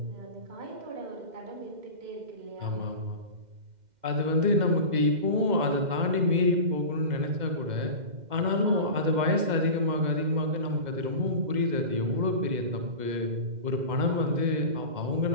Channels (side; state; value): left; late; 2.1 ms